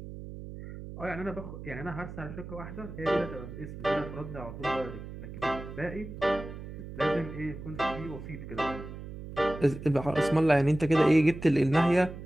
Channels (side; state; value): right; noise; hum, 11 dB below the sound